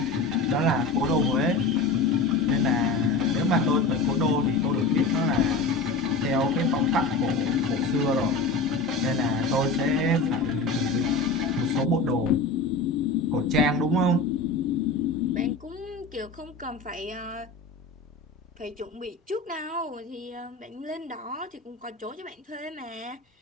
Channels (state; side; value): quieter; right; 3.5 dB